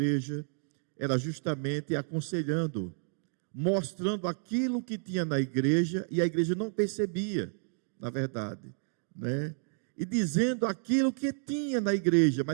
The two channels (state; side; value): silent; left; 57 dB below the other